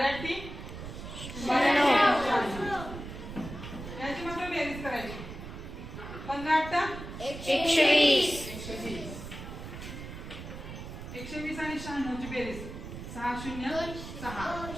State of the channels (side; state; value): right; noise; rumble, 10 dB below the sound